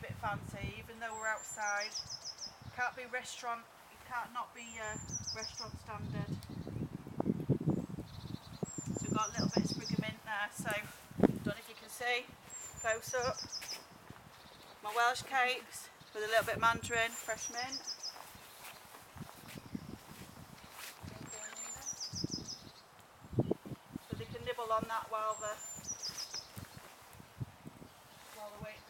bit fancy, even though we're outside. Can't be restaurant. It can't not be restaurant standard. So we've got a little bit of sprig of mint there. So I don't know if you can see. Close up. My Welsh cakes with a little bit of mandarin, fresh mint. So they can nibble on that while they're waiting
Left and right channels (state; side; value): identical; both; correlation 1.00